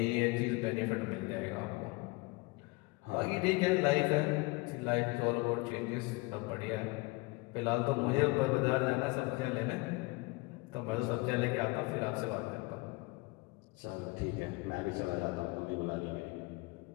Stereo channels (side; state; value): right; quieter; 25.1 dB